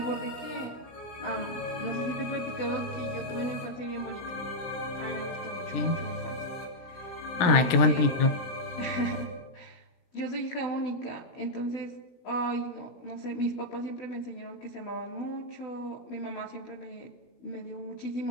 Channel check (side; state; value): right; late; 17 ms